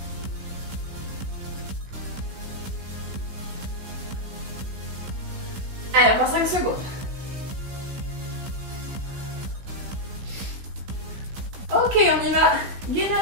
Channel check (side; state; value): left; late; 16 ms